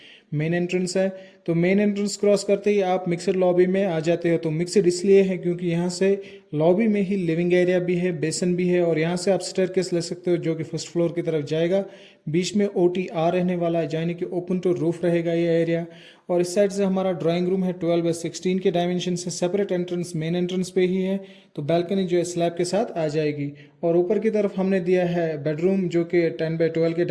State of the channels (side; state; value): both; identical; correlation 1.00